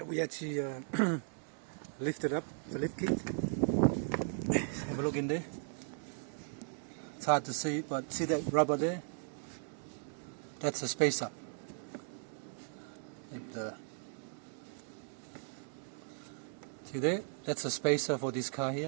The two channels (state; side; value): silent; left; 53 dB below the other